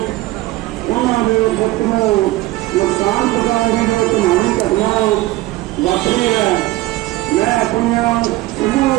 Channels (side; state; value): left; quieter; 18.1 dB